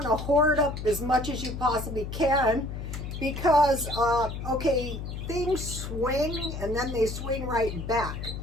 to hoard up as much as you possibly can. Because, things swing and then they swing right back.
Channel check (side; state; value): left; noise; hum, 7 dB below the sound